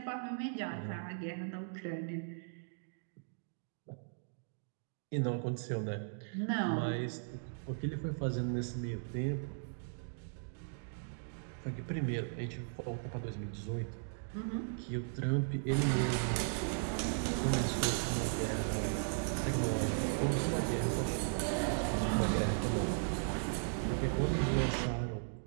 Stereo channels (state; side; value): silent; left; digital silence